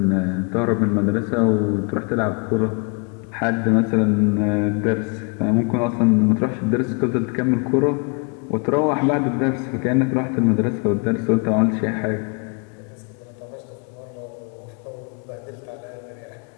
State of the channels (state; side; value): quieter; right; 35.0 dB